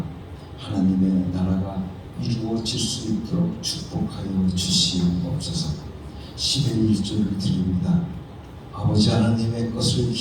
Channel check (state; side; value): identical; both; correlation 1.00